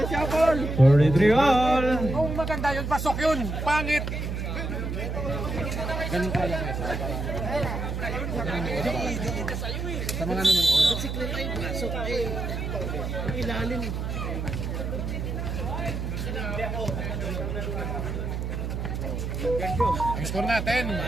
all. Kung maganda yun, pasok yun. Pangit. Ganun ka lang eh. Sa mga nanonood. Ang score natin,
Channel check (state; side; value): noise; right; hum, 3 dB below the sound